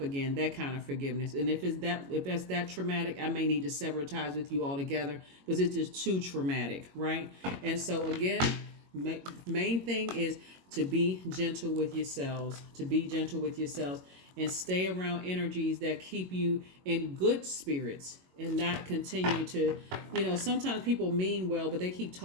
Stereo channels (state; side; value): late; left; 22 ms